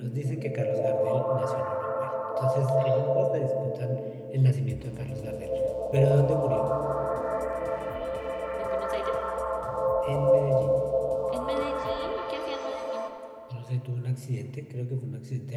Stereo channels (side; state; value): both; identical; correlation 1.00